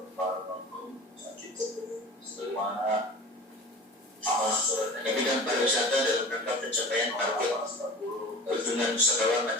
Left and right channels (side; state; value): both; normal; correlation 0.38